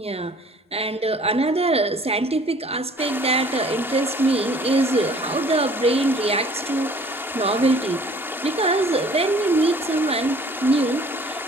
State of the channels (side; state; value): both; normal; correlation 0.53